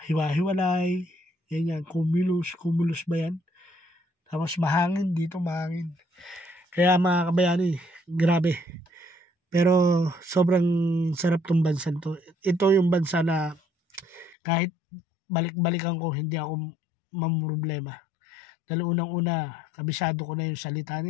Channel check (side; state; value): right; drops out; at 14.4 s